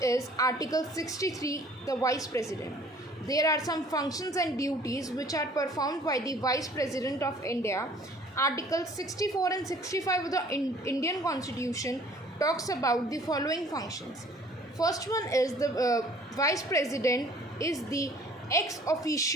is Article 63, the Vice President. There are some functions and duties which are performed by the Vice President of India. Article 64 and 65 of the Indian Constitution talks about the following functions. First one is the Vice President is the ex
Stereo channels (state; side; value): normal; both; correlation 0.54